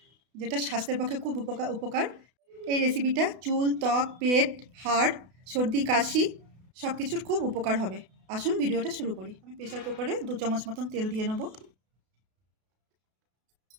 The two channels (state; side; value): late; left; 32 ms